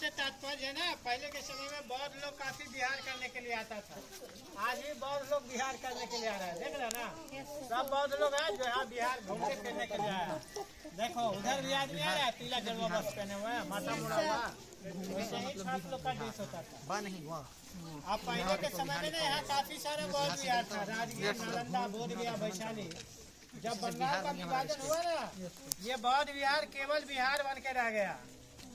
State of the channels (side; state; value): both; identical; correlation 1.00